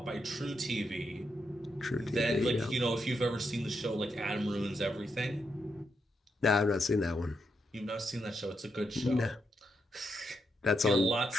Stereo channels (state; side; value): normal; both; correlation 0.82